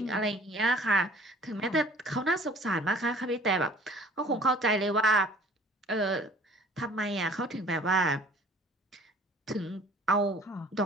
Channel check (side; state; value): both; normal; correlation 0.51